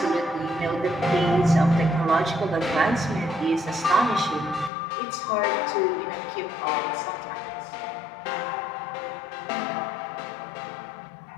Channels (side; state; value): right; drops out; at 4.7 s